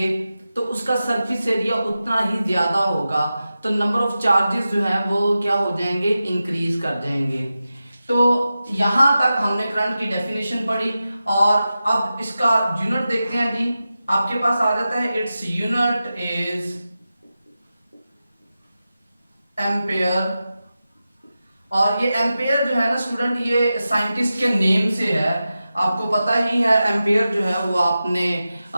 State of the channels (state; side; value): inverted; both; correlation -0.93